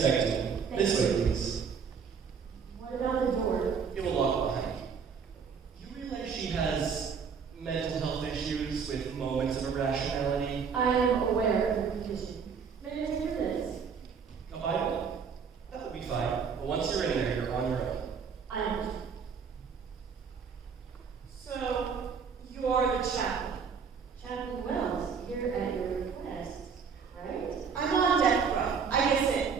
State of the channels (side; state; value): left; quieter; 6.2 dB